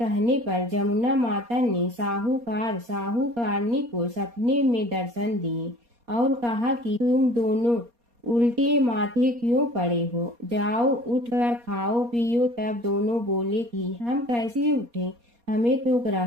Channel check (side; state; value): left; late; 4.2 ms